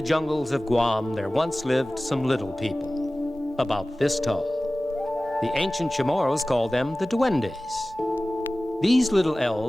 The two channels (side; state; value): both; normal; correlation 0.97